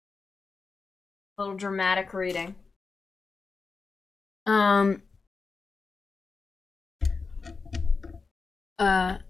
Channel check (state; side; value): quieter; right; 4.5 dB